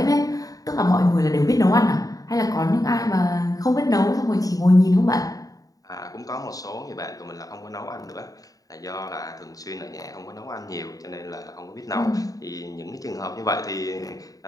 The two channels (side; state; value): right; late; 0.17 ms